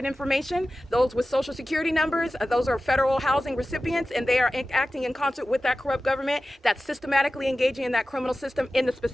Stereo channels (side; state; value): both; normal; correlation 0.95